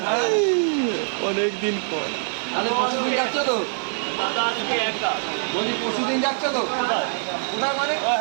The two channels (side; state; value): left; silent; digital silence